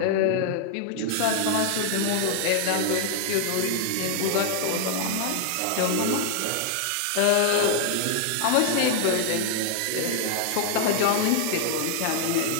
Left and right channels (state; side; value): different; both; correlation 0.00